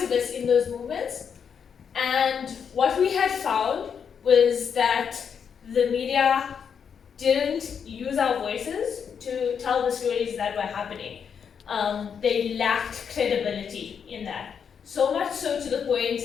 in those movements. And what we had found was that the media didn't use our voices to tell the stories that were happening. They lacked credibility in that. So much so to the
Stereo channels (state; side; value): quieter; right; 7.1 dB